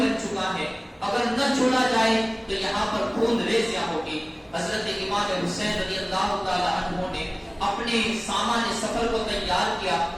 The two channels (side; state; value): both; identical; correlation 1.00